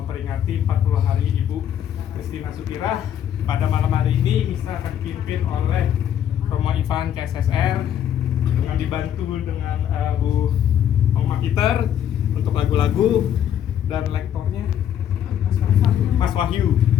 40 hari Ibu Christina Sukirah. Pada malam hari ini misa akan dipimpin oleh Romo Ivan KSSR dengan dibantu dengan Bu Oma Peter untuk lagu-lagu dan lektornya Mas Wahyu.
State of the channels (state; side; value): quieter; right; 10.0 dB